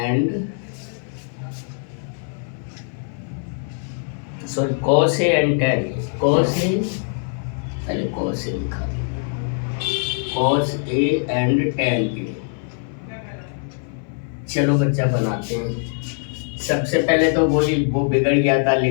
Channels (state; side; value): silent; right; 57 dB below the other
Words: sorry cos A and tan A, cos A, पहले cos A लिखा, cos A and tan A. चलो बच्चा बनाते हैं। सबसे पहले तो वो बिगड़ गया था,